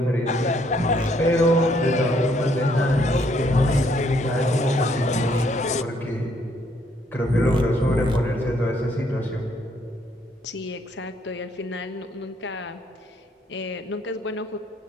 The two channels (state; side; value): normal; both; correlation 0.68